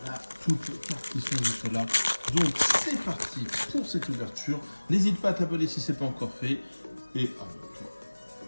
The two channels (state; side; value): inverted; both; correlation -1.00